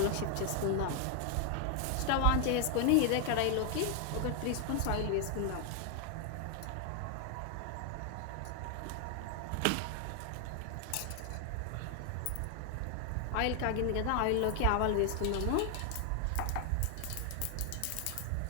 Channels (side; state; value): both; different; correlation 0.00